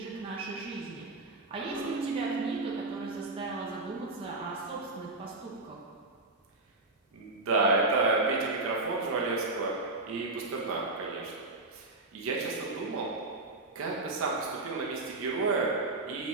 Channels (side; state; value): left; quieter; 3.1 dB